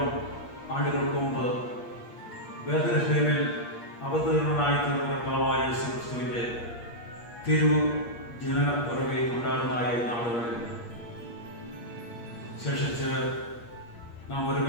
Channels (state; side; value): late; right; 8.5 ms